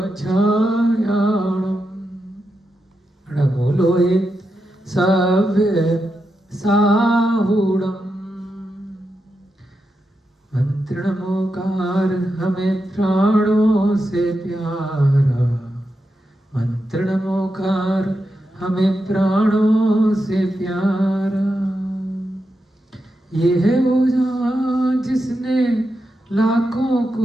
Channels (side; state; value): both; normal; correlation 0.87